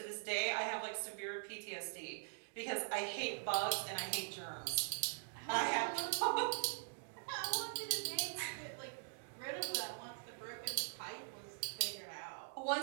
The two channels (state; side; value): silent; left; digital silence